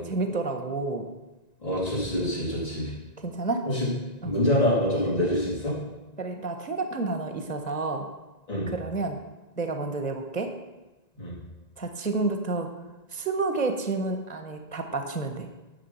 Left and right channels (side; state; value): right; late; 1.9 ms